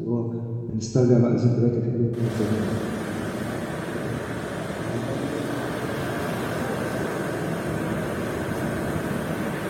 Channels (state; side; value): identical; both; correlation 1.00